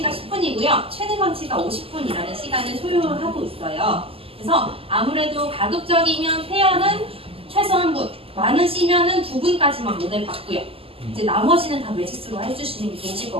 시간을 소요하고 있어요. 그래서 아무래도 가급적이면 페어는 최소 한 분, 많으시면은 2분까지만 모델 받고요. 이제 나머지는 다 매직스로 해주시는 게 좋으실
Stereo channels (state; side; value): late; left; 0.27 ms